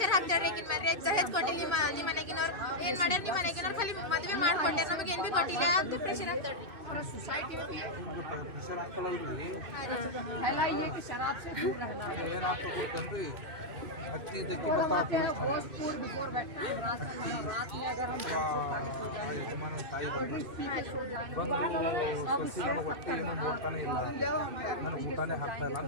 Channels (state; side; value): late; left; 2.6 ms